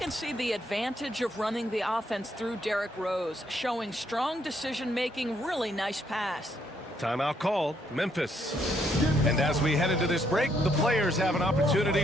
see the advantage of running the offense through Derrick Rose, showing strong decision-making, really nice pass. Timeout called, Memphis. And as we head into this break, the players have an opportunity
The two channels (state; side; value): normal; both; correlation 0.72